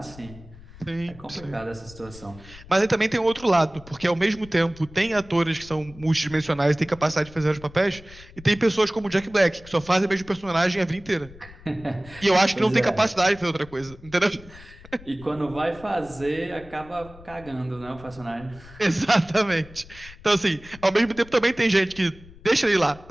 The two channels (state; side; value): noise; left; rumble, 20 dB below the sound